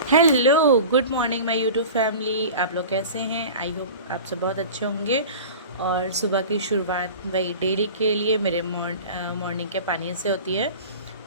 Hello, good morning my YouTube family. आप लोग कैसे हैं? आई होप आप सब बहुत अच्छे होंगे। और सुबह की शुरुआत वही डेली के लिए मेरे मॉर्निंग के पानी से होती है।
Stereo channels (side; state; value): both; inverted; correlation -0.37